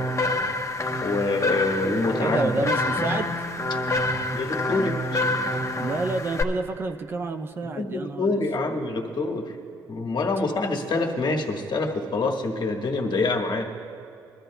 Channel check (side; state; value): both; normal; correlation 0.60